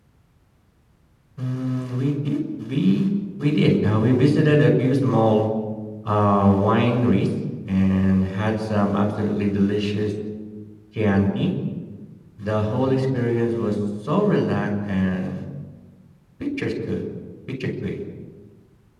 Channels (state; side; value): identical; both; correlation 1.00